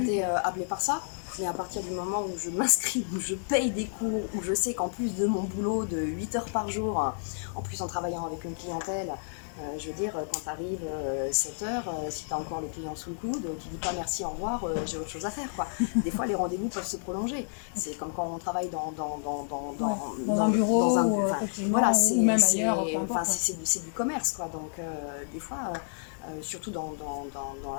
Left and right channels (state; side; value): silent; right; digital silence